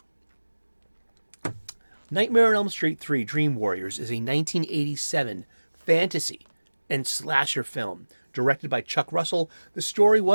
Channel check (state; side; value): inverted; both; correlation -1.00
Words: Nightmare on Elm Street 3 Dream Warriors is a 1987 fantasy and slasher film directed by Chuck Russell. The story